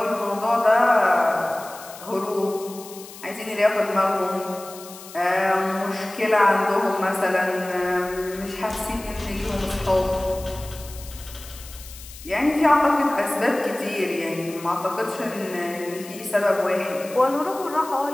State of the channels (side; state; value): left; noise; hiss, 16 dB below the sound